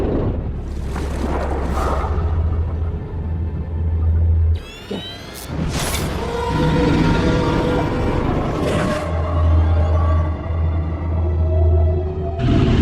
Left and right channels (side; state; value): both; identical; correlation 1.00